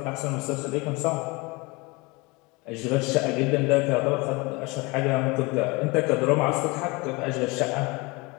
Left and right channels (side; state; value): right; quieter; 25.6 dB